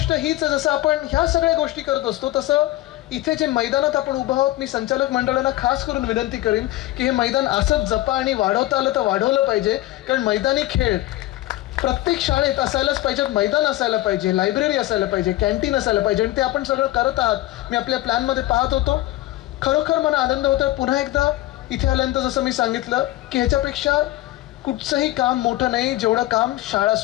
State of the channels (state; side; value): quieter; right; 16.5 dB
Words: हीच आहे, जसं आपण ह्या सगळ्या गोष्टी करत असतो तसं इथे जे मैदानात आपण उभं आहोत, मी संचालक मंडळाला खास करून विनंती करीन की हे मैदान असंच जपा आणि वाढवता आलं तर वाढवलं पाहिजे. कारण मैदानी खेळ प्रत्येक शाळेत असायलाच पाहिजे. मैदान असायला पाहिजे, लायब्ररी असायला पाहिजे, कॅन्टीन असायला पाहिजे, आणि ते आपण सगळं करत आहात. मी आपल्या प्लॅनमध्ये पाहत होतो. खरोखर मला आनंद होतोय पुन्हा एकदा इथे आल्यानंतर. जसं मी सांगितलं की ह्याच्यापेक्षा कुठचंही काम मोठं नाही जेवढं काम शाळा